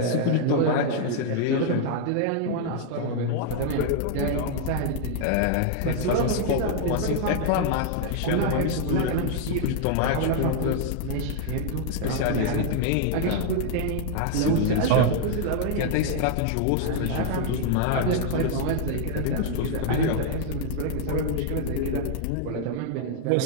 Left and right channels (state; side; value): different; both; correlation 0.00